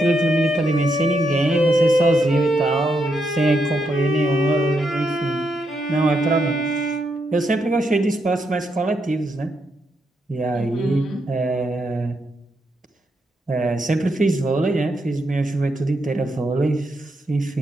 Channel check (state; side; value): normal; both; correlation 0.81